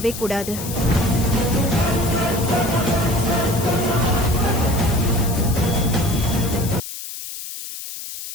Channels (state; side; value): noise; left; hiss, 9 dB below the sound